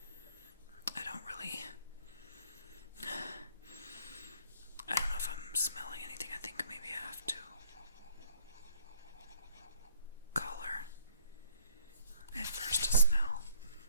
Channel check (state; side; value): inverted; both; correlation -0.60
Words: I don't know if I'm smelling anything. I think maybe I have to color it first to smell.